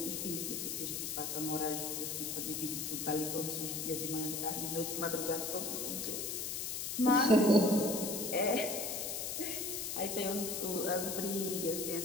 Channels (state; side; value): noise; left; hiss, 3 dB below the sound